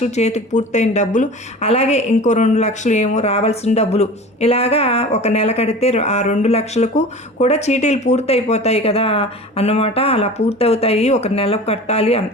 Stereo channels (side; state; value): both; normal; correlation 0.37